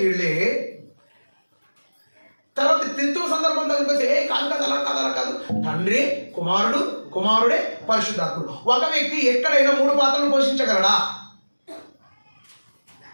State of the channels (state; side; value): inverted; both; correlation -1.00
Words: వీళ్ళే. తర్వాత త్రిత్వం సందర్భం దగ్గరికి కాదు అలా కాదు, తండ్రి, కుమారుడే పరిశుద్ధాత్ముడు. ఒక వ్యక్తి ఎక్కడైనా 3 పాత్రలు పోషించగలడా?